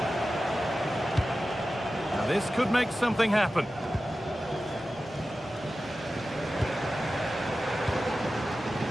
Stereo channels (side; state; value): both; normal; correlation 0.94